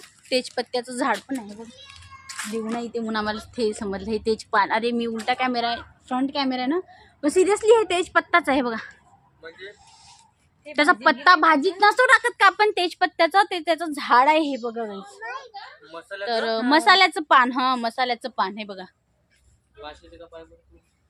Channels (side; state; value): both; identical; correlation 1.00